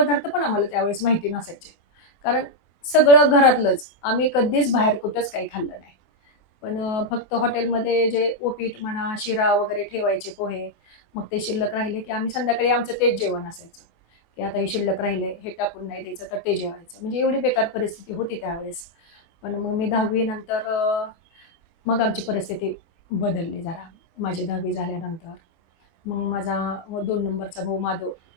पण आम्हाला त्यावेळेस माहिती नसायचे. कारण सगळं घरातलंच. आम्ही कधीच बाहेर कुठंच काही खाल्लं नाही. पण फक्त हॉटेलमध्ये जे उपीट म्हणा, शिरा वगैरे ठेवायचे पोहे, मग ते शिल्लक राहिले, की आम्ही संध्याकाळी आमचं तेच जेवण असायचं, की आता हे शिल्लक राहिले, हे टाकून नाही द्यायचं, तर ते जेवायचं. म्हणजे एवढी बेकार परिस्थिती होती त्यावेळेस. पण मग मी 10वी नंतर मग आमची परिस्थिती बदलली जरा. माझी 10वी झाल्यानंतर. मग माझा 2 नंबरचा भाऊ माधव,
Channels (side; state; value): right; late; 24 ms